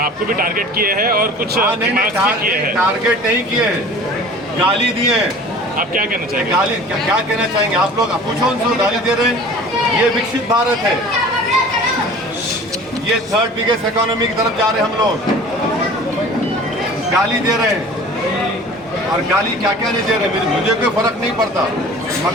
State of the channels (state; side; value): normal; both; correlation 0.43